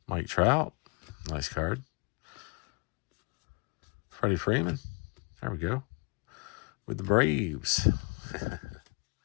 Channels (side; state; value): right; quieter; 31.2 dB